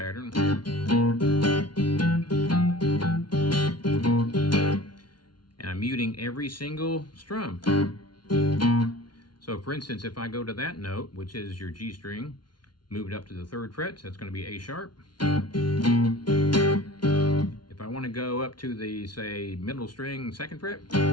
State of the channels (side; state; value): right; late; 0.70 ms